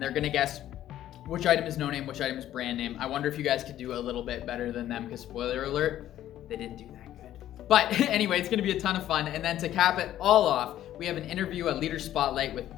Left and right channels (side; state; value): right; quieter; 12.5 dB